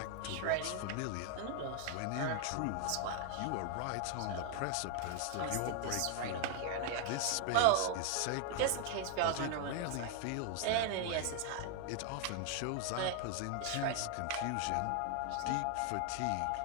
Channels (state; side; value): different; both; correlation 0.00